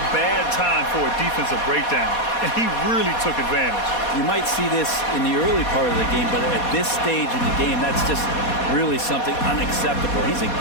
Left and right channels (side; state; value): right; late; 4.2 ms